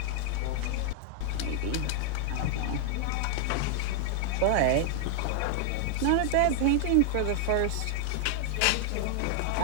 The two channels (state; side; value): different; both; correlation 0.00